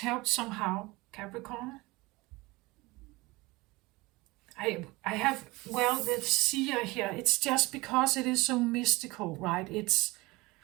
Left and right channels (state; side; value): quieter; left; 22.2 dB